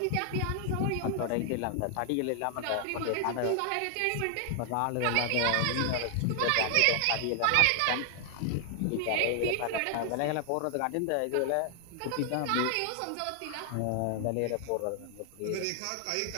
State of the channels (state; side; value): different; both; correlation 0.00